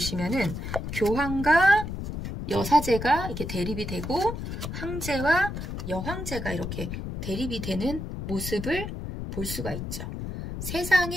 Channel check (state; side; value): noise; left; rumble, 6 dB below the sound